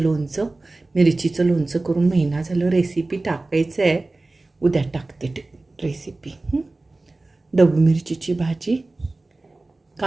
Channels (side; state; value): left; quieter; 3.1 dB